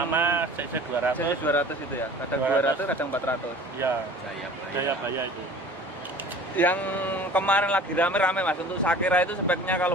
CC 200. CC 200 itu ya? Kadang 200, 200, kadang 400. Iya, Jayabaya itu. Yang kemarin lagi rame-rame Mas, untuk Sakera itu speknya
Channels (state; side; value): normal; both; correlation 0.44